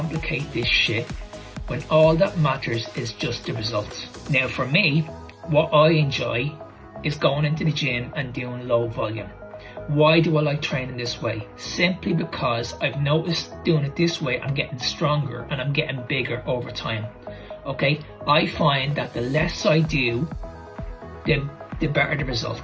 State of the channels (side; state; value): both; identical; correlation 1.00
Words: this shit when all that matters is just the results. Now for me, what I enjoy is going into the gym and doing low volume. Why do I like training this way? Simply because I've noticed doing it this way, I'm getting stronger and I'm getting bigger over time. Okay, I find that the less I do, the better the